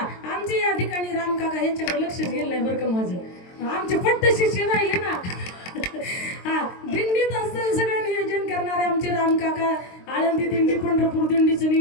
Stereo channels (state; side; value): late; right; 22 ms